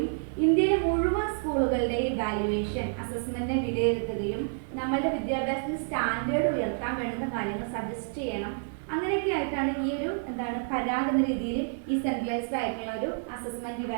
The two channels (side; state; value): left; silent; 59 dB below the other